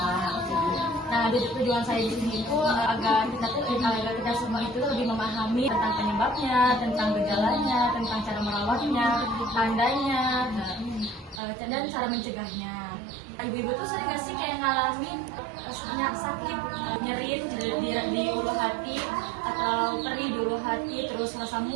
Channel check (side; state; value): left; drops out; at 11.4 s